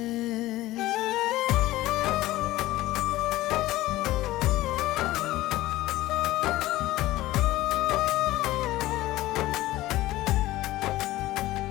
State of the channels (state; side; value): quieter; right; 16.9 dB